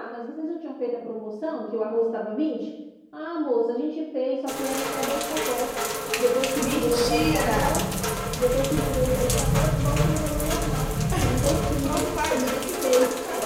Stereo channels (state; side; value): identical; both; correlation 1.00